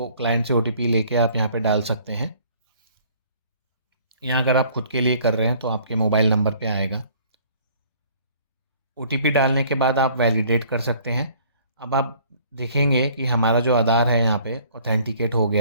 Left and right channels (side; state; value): both; inverted; correlation -0.56